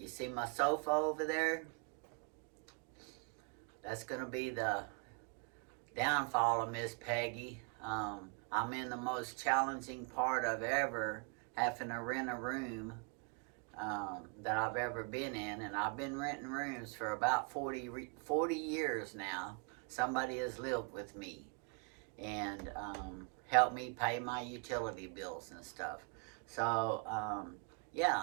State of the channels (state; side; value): quieter; left; 35.6 dB